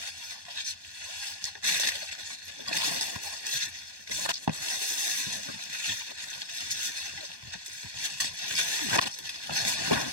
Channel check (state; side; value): late; left; 1.2 ms